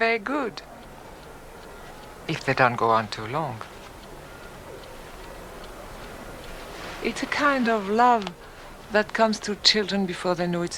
good, if they don't go on too long. It's a kind of love that comes to children before they know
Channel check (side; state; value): both; identical; correlation 1.00